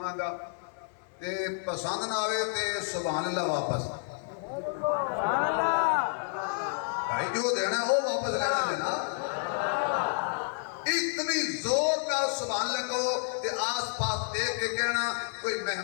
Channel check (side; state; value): right; silent; 58 dB below the other